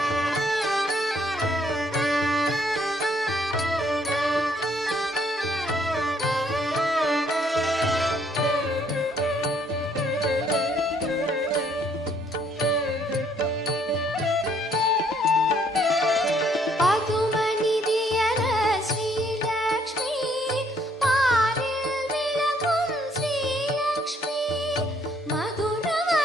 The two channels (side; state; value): both; normal; correlation 0.66